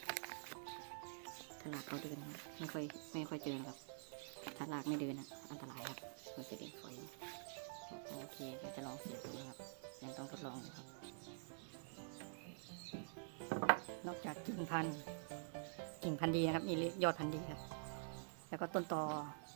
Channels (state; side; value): silent; left; digital silence